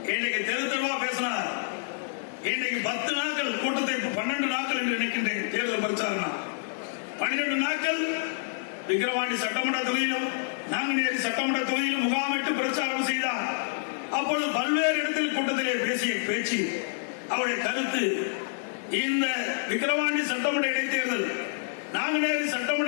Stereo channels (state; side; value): silent; right; digital silence